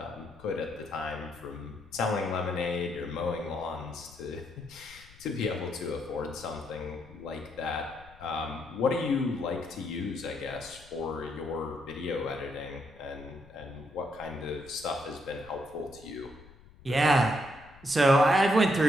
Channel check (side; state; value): left; noise; rumble, 22 dB below the sound